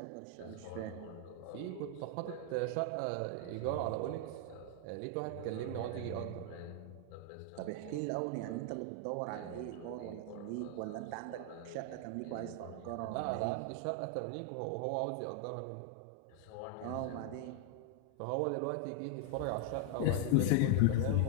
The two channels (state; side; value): different; both; correlation 0.00